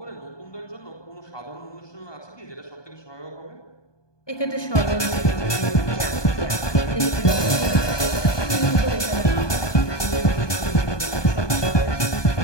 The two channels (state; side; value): late; right; 1.2 ms